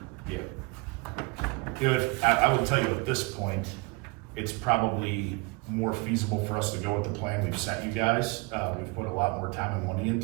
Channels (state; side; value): quieter; left; 27.4 dB